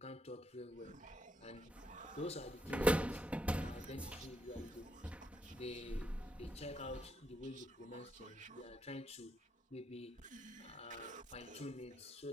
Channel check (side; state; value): both; normal; correlation 0.78